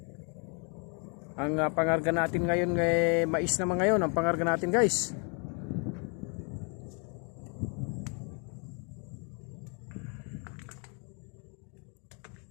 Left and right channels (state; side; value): quieter; right; 37.0 dB